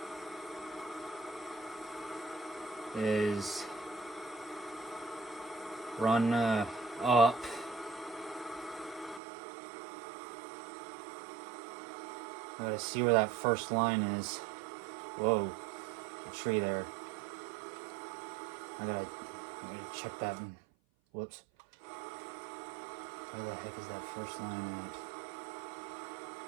is run up. I gotta see where that first line is. Whoa, a tree there. I gotta check that. Whoops. Where the heck is that first line at?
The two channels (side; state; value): left; drops out; at 9.2 s